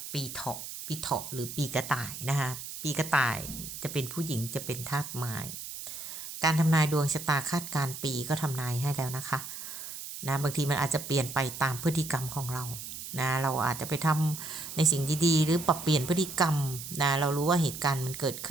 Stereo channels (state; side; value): noise; right; hiss, 9 dB below the sound